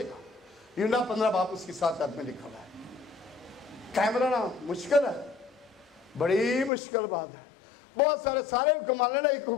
यूहन्ना 15 बाब उसकी 7 आयत में लिखा हुआ है। कायम रहना मुश्किल है, बड़ी मुश्किल बात है। बहुत सारे हुक्म मान लेना, एक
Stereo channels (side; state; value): right; drops out; at 6.7 s